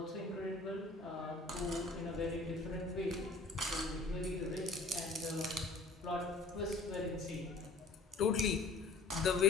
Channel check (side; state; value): right; quieter; 3.6 dB